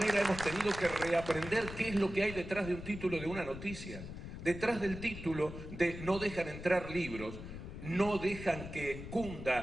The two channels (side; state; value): left; noise; rumble, 10 dB below the sound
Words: hemos tenido que reaprender qué es lo que hay detrás de un título de una noticia. Detrás del título de no dejan entrar libros, no dejan que